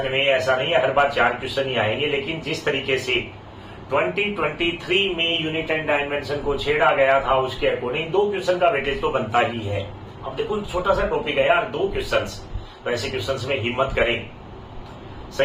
में ऐसा नहीं है हर बार 4 क्वेश्चन ही आएंगे, लेकिन जिस तरीके से 2023 में यूनिट एंड डायमेंशन को छेड़ा गया था उसके अकॉर्डिंग 2 क्वेश्चन का वेटेज तो बनता ही है। अब देखो छोटा सा टॉपिक है यार, 2 क्वेश्चन, तो ऐसे क्वेश्चन में हिम्मत करें,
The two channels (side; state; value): both; identical; correlation 1.00